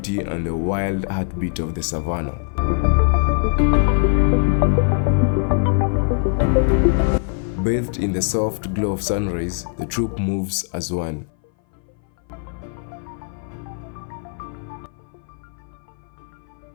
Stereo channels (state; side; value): silent; right; 58 dB below the other